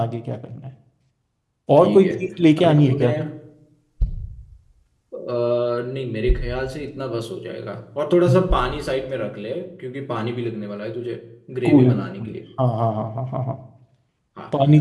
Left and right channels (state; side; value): identical; both; correlation 1.00